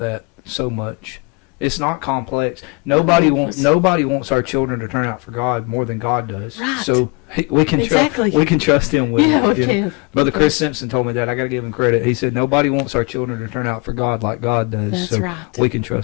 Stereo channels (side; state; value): right; quieter; 29.1 dB